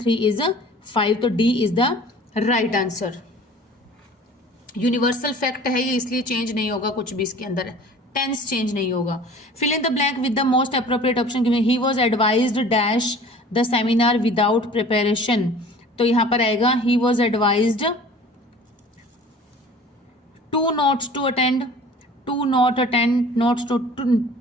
3 is 5, तो D is the right answer. Universal fact है ये, इसलिए चेंज नहीं होगा कुछ भी इसके अंदर, टेंस चेंज नहीं होगा। Fill in the blank with the most appropriate option given. He was advised dash the seminar without preparation, तो यहां पर आएगा he was advised to not to attend, to not attend, not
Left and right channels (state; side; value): normal; both; correlation 0.46